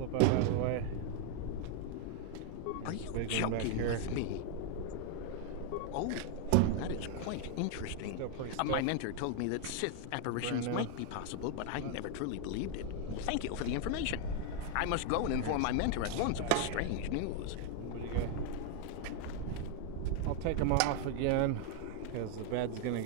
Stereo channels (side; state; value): both; different; correlation 0.01